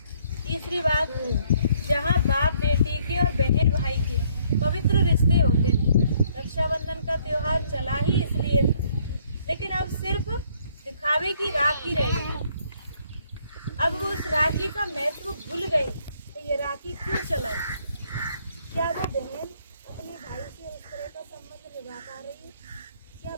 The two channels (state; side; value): inverted; both; correlation -0.65